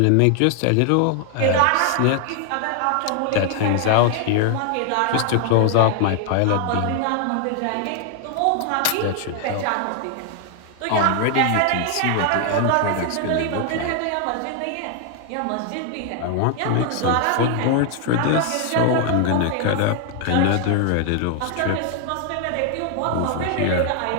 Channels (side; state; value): both; different; correlation 0.00